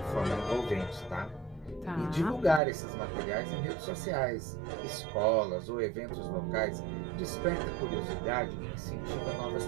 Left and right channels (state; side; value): drops out; left; at 2.6 s